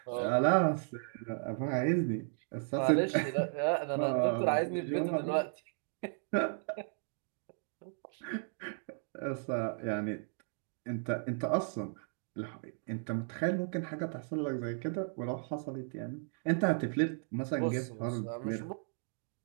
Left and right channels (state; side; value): silent; left; 54 dB below the other